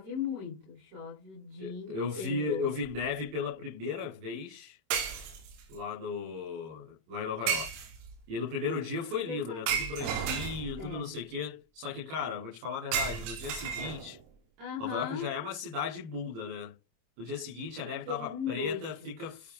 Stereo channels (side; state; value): left; late; 26 ms